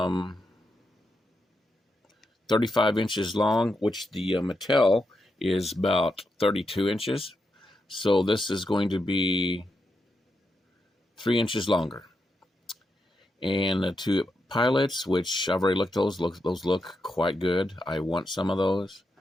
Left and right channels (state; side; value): normal; both; correlation 0.84